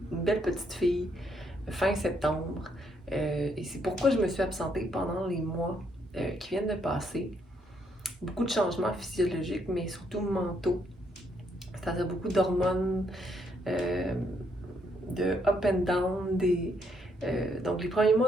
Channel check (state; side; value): normal; both; correlation 0.73